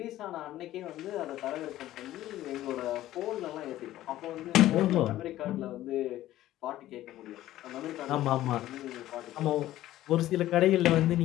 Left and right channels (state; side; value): quieter; right; 14.4 dB